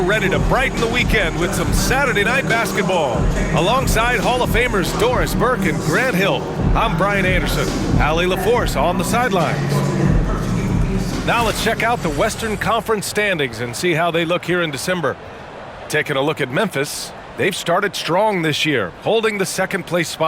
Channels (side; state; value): both; identical; correlation 1.00